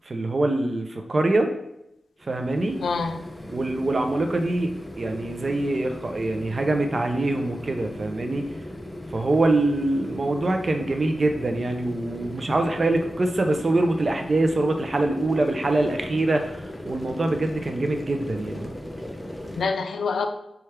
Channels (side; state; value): both; normal; correlation 0.93